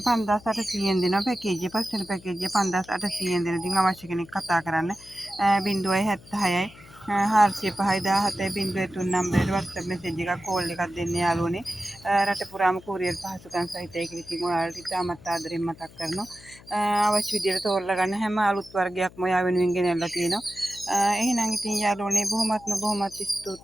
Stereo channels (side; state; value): left; noise; hum, 22 dB below the sound